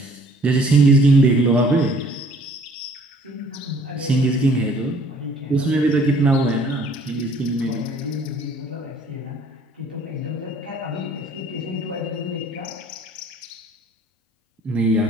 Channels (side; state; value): both; normal; correlation 0.57